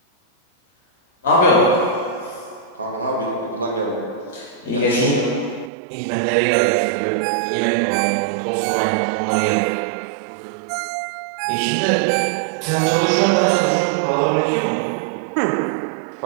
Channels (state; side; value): drops out; left; at 5.7 s